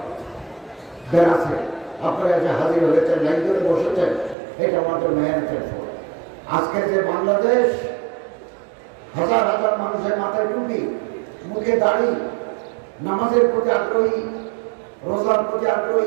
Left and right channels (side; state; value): left; drops out; at 4.4 s